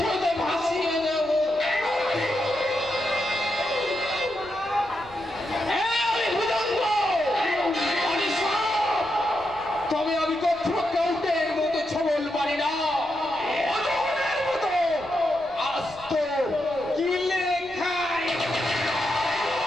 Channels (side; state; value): left; noise; rumble, 24 dB below the sound